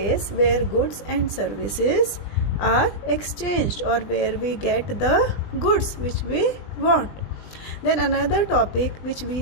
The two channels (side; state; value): right; late; 20 ms